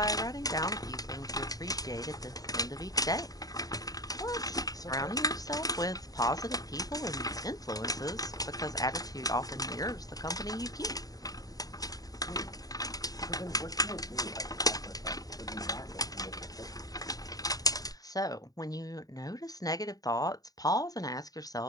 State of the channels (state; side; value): late; right; 0.18 ms